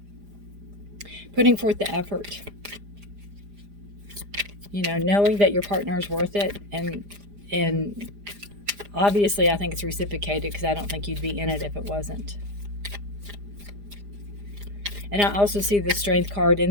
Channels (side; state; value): left; late; 4.9 ms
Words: Putting forth the effort. Knowing that your partner is worth it, and obviously I think it's reciprocated, because I don't think you'd be in it if it wasn't. And I also see the Strength card